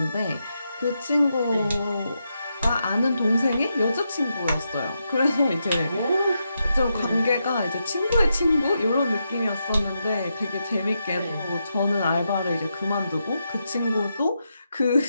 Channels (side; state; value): both; inverted; correlation -0.84